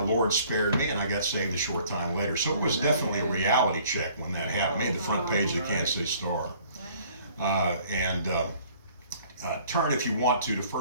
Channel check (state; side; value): inverted; both; correlation -0.56